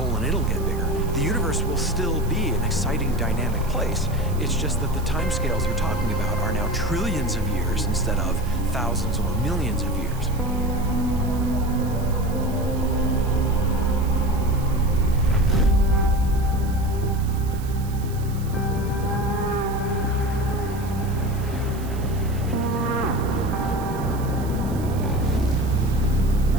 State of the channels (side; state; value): right; noise; hiss, 19 dB below the sound